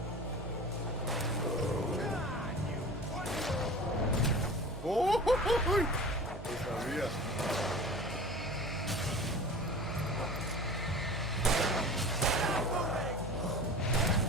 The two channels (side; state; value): both; normal; correlation 0.37